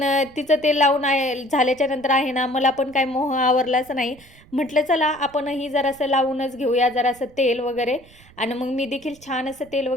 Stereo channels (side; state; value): right; noise; rumble, 25 dB below the sound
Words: तिचं तेल लावून झाल्याच्या नंतर आहे ना, मला पण काय मोह आवरलाच नाही. म्हटलं चला आपणही जरासं लावूनच घेऊया जरासं तेल वगैरे. आणि मग मी देखील छान असं तेल